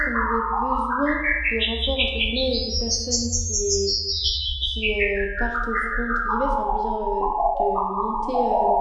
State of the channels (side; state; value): both; identical; correlation 1.00